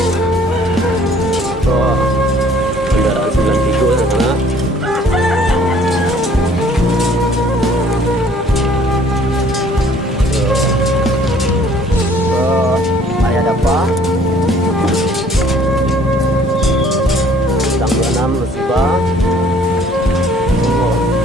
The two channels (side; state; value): both; normal; correlation 0.57